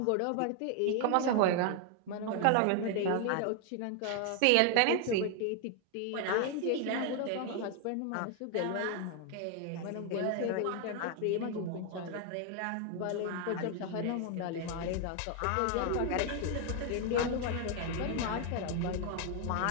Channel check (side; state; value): both; different; correlation 0.00